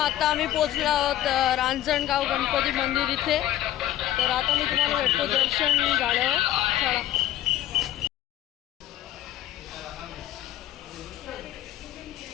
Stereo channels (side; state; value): right; quieter; 13.1 dB